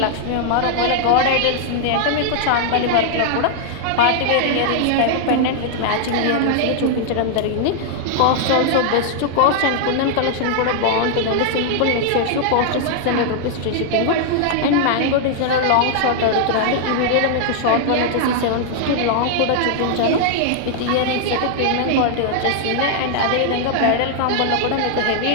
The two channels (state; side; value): different; both; correlation 0.00